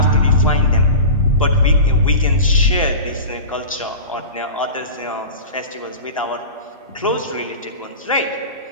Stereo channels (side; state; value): both; inverted; correlation -0.31